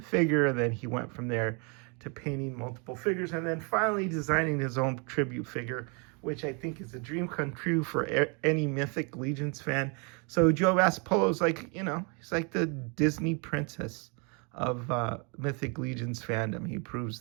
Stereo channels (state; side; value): quieter; left; 34.3 dB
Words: and then he went from there to painting multiple figures, and then finally designing his own tribute figure, which I think is a dream come true for any Mythic Legions fan. So Joe Vasipolo is like, he's like the Disney princess of Mythic Legions fandom. He proves